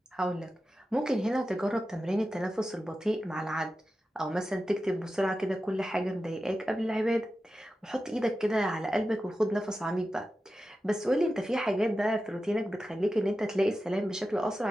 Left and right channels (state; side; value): normal; both; correlation 0.92